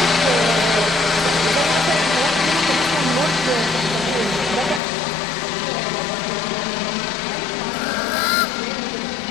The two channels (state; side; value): drops out; right; at 4.8 s